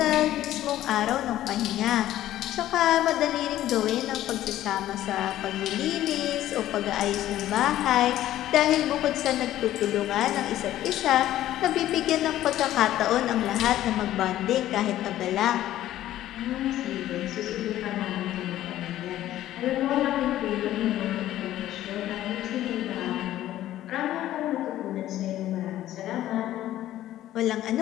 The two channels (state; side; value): quieter; right; 13.5 dB